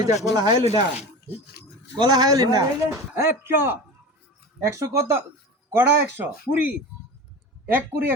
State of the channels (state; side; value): normal; both; correlation 0.31